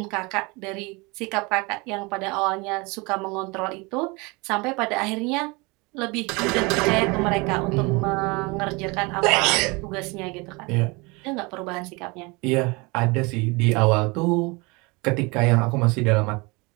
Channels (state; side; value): quieter; left; 26.8 dB